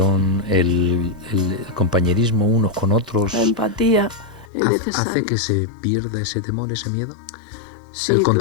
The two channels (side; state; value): right; drops out; at 4.5 s